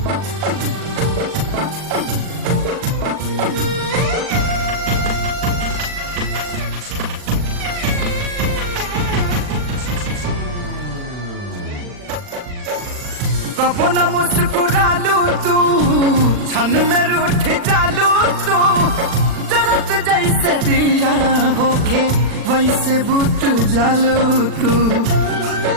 कबो न मुस्कुरालू तू, क्षण में रूठ जालू तू। जरत जैसे दिया होके वैसे बुत जालू तू।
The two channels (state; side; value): late; left; 40 ms